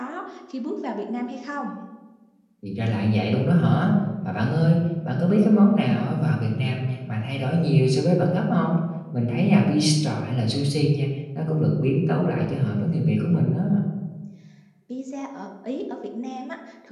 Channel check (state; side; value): identical; both; correlation 1.00